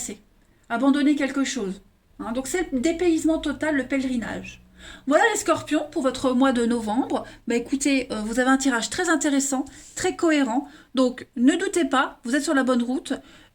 abandonner quelque chose. Hein. Donc c'est le dépaysement total, le pèlerinage. Voilà les scorpions pour votre mois de novembre. Bah écoutez, vous avez un tirage très intéressant, très cohérent. Donc ne doutez pas, vous êtes sur la bonne route.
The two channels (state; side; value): identical; both; correlation 1.00